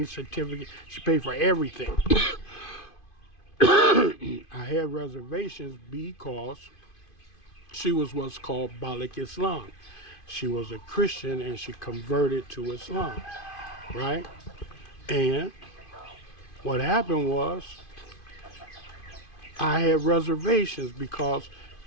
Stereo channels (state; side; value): late; right; 2.5 ms